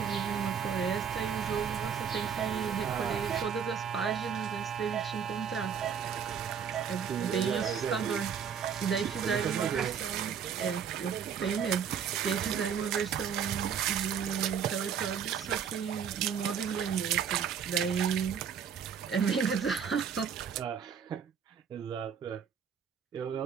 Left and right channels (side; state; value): left; quieter; 7.3 dB